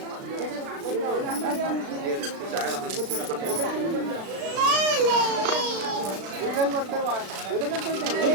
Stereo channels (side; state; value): left; late; 36 ms